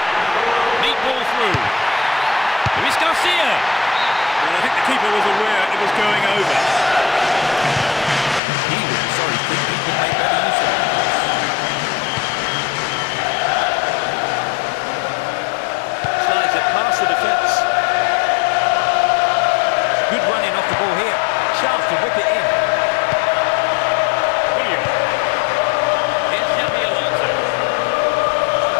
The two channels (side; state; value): right; drops out; at 8.4 s